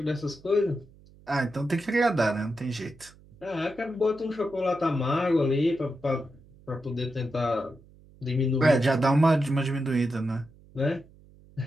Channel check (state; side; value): noise; right; hum, 25 dB below the sound